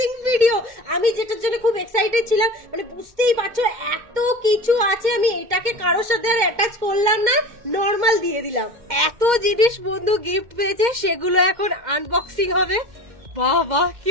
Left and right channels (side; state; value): left; late; 2.1 ms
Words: ভিডিও। আমি যেটার জন্য খুব এক্সাইটেড ছিলাম, মানে বুঝতেই পারছো এত কিছু আছে, আমি এটাকে কারোর সাথে আর অ্যাটাচ করলাম না, নর্মাল দিয়ে দিলাম। এত জিনিস বন্ধু গিফট পেয়েছে, সেগুলো এখন আনবক্সিং হবে। বাহ বাহ, কি